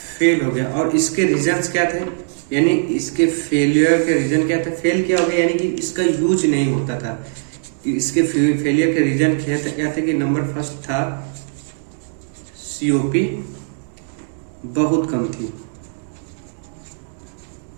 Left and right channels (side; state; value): left; silent; 61 dB below the other